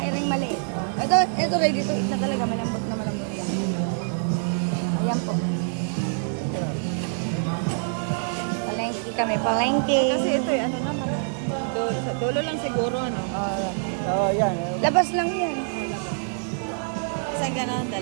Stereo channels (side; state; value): left; silent; digital silence